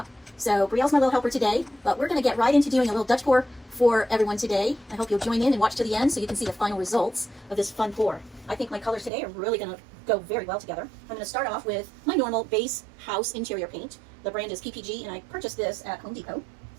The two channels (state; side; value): drops out; left; at 9.1 s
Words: So Brielle's my little helper today, but we're going to get right into doing a little Dutch pour for everyone today. I hope you'll join in and watch to the end so you can see the final results of this fun pour. I think my colors today are really going to go very well together. I'm going to start off with my normal base house interior paint. The brand is PPG, and I purchased this at Home Depot.